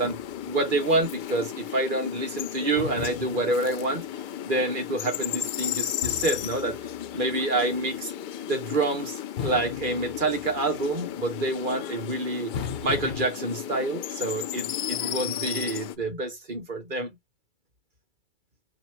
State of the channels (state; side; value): late; left; 2.3 ms